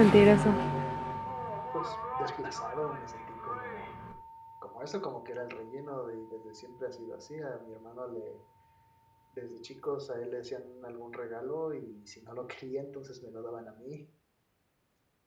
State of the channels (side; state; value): both; identical; correlation 1.00